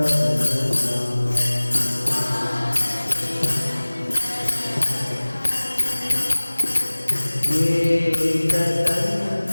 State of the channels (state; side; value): inverted; both; correlation -1.00